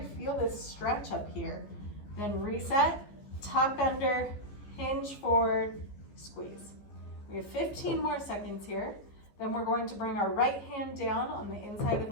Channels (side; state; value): right; late; 15 ms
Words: feel this stretch up here, then reset, tuck under, hinge forward, squeeze. We have 15 more seconds here. Then we're going to bring our right hand down on the inside of